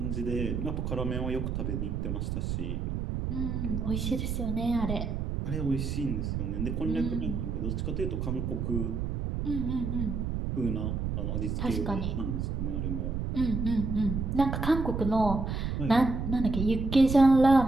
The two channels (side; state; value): right; noise; rumble, 2 dB below the sound